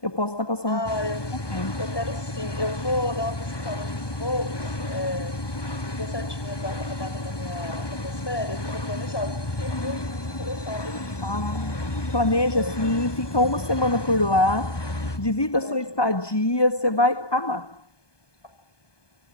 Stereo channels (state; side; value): late; right; 1.2 ms